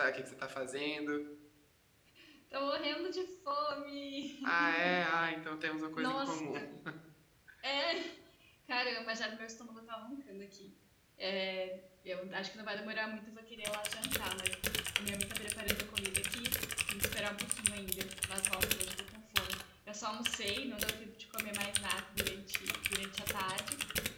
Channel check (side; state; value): both; identical; correlation 1.00